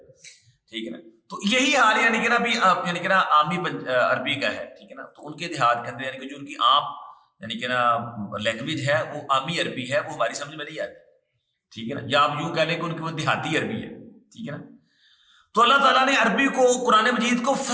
ٹھیک ہے نا۔ تو یہی حال یعنی کہ نا ابھی یعنی کہ نا عامی عربی کا ہے، ٹھیک ہے نا۔ تو ان کے دیہات کے اندر یعنی کہ جو ان کی عام یعنی کہ نا لینگویج ہے وہ عامی عربی ہے، وہ ہماری سمجھ میں نہیں آتی، ٹھیک ہے نا، یا آپ یوں کہہ لیں کہ ان کی وہ دیہاتی عربی ہے، ٹھیک ہے نا۔ تو اللہ تعالیٰ نے عربی کو قرآن مجید کو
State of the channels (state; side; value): identical; both; correlation 1.00